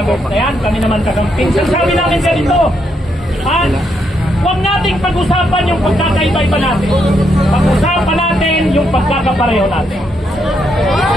na yan. Kami naman kagamping. Sabi namin ganito. Huwag nating pag-usapan yung pagkakaiba-iba natin. Pag-usapan natin yung pagkakapareho natin.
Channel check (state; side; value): normal; both; correlation 0.78